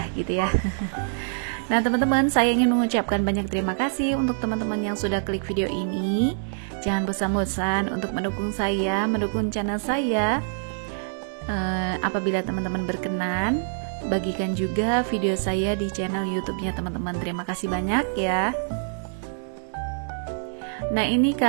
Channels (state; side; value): silent; left; digital silence